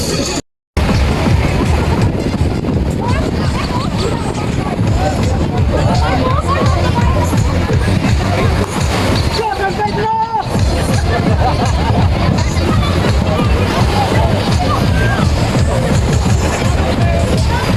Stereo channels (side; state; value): both; identical; correlation 1.00